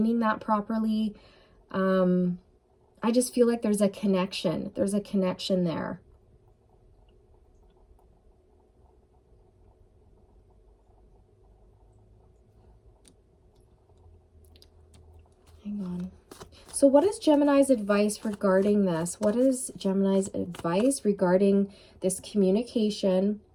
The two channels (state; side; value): identical; both; correlation 1.00